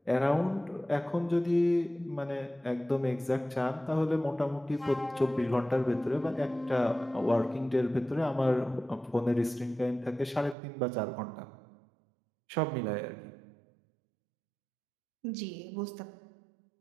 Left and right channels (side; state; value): left; drops out; at 10.6 s